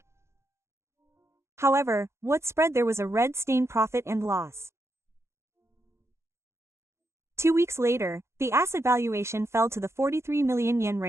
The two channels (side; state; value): left; late; 0.13 ms